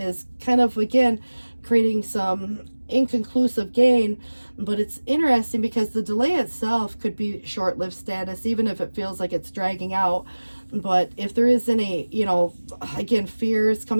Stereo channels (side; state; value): both; inverted; correlation -1.00